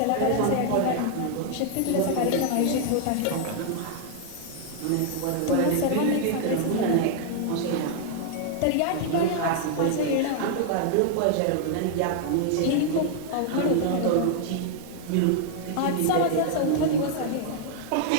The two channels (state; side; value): different; both; correlation 0.00